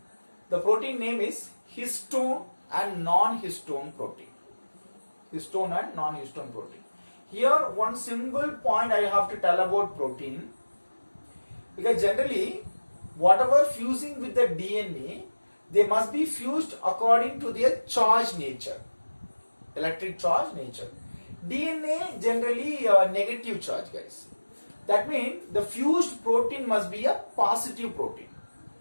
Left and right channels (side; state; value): both; inverted; correlation -1.00